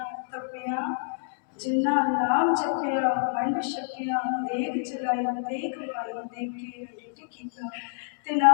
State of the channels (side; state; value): right; silent; digital silence